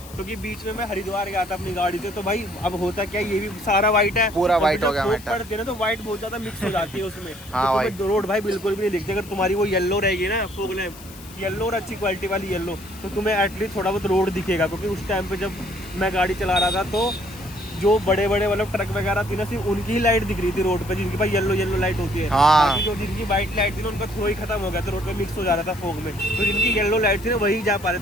क्योंकि बीच में मैं हरिद्वार गया था अपनी गाड़ी से, तो भाई अब होता क्या, ये भी सारा व्हाइट है, पूरा व्हाइट हो गया पड़ती है ना, तो व्हाइट बहुत ज्यादा मिक्स हो जाती है उसमें। हाँ भाई। तो रोड भाई बिल्कुल भी नहीं दिखती, अगर तुम्हारी वो येलो रहेगी ना फॉग लैंप, येलो और अच्छी क्वालिटी वाली येलो, तो तुम्हें एटलीस्ट थोड़ा बहुत रोड दिखेगा, क्योंकि उस टाइम पे जब मैं गाड़ी चला रहा था तो जो बड़े बड़े मतलब ट्रक वगैरह थी ना, सिर्फ उनकी ही लाइट दिख रही थी रोड पे, जिनकी भाई येलो लाइट होती है। बाकी जो जिनकी व्हाइट लाइट थी ना, उनका थ्रो ही खत्म हो गया था, रोड पे मिक्स हो जा रहा था फॉग में, तो जिनकी येलो लाइट थी ना वही जा पा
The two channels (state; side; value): noise; left; hiss, 19 dB below the sound